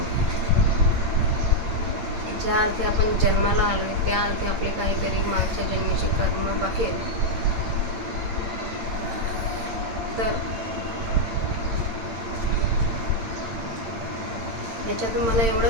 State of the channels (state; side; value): late; left; 8.8 ms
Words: ज्या अर्थी आपण जन्माला आलोय त्या अर्थी आपले काहीतरी मागच्या जन्मीचे कर्म बाकी आहेत. तर ह्याच्यातून मला